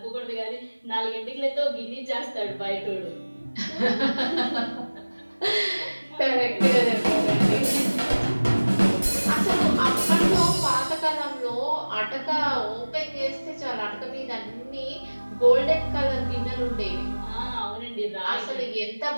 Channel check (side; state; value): both; inverted; correlation -1.00